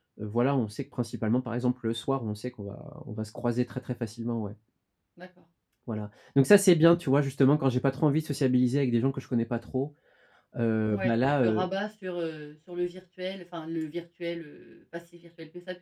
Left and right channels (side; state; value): both; identical; correlation 1.00